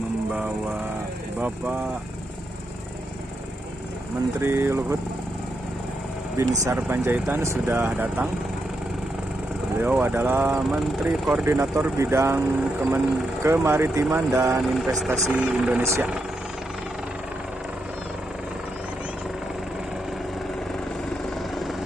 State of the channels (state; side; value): normal; both; correlation 0.83